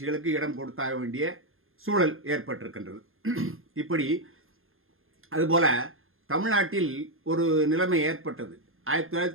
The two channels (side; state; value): left; late; 0.60 ms